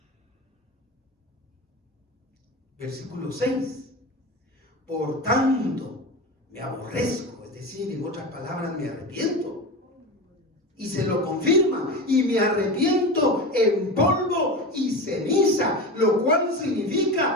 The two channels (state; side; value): normal; both; correlation 0.26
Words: Versículo 6. Por tanto, me aborrezco, es decir, en otras palabras, me arrepiento. Y se lo confirma, y me arrepiento en polvo y ceniza, lo cual